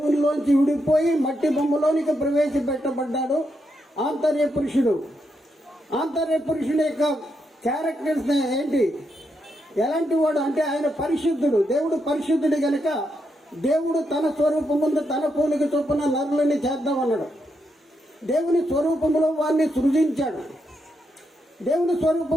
విడిపోయి మట్టి బొమ్మలోనికి ప్రవేశపెట్టబడ్డాడు ఆంతర్య పురుషుడు. ఆంతర్య పురుషుడు యొక్క క్యారెక్టర్స్ ఏంటి? ఎలాంటి వాడు అంటే, ఆయన పరిశుద్ధుడు. దేవుడు పరిశుద్ధుడు గనక దేవుడు తన స్వరూపముందు తన పోలిక చొప్పున నరులని చేద్దామన్నాడు. దేవుని స్వరూపంలో వారిని సృజించాడు. దేవుని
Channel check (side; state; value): both; normal; correlation 0.81